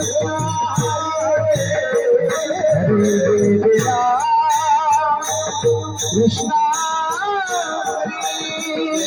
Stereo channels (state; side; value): identical; both; correlation 1.00